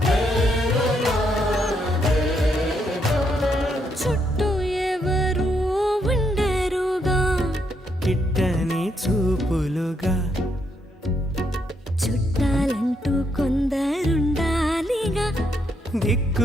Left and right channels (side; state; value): both; normal; correlation 0.76